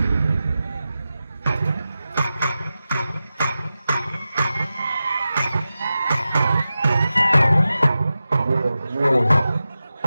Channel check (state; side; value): inverted; both; correlation -0.94